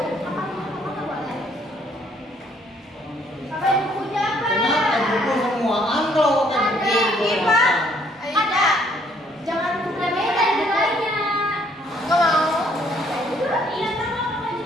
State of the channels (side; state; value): both; normal; correlation 0.65